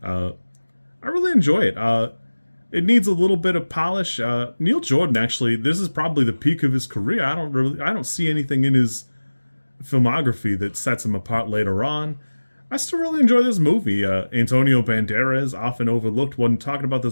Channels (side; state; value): both; inverted; correlation -1.00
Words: I really enjoy it. It needs a little bit of polish. Neil Jordan, actually, this is probably the peak of his career. I don't see anything in his filmography that sets him apart later on. I still really enjoy this movie. Antonio Banderas, often overlooked when talking about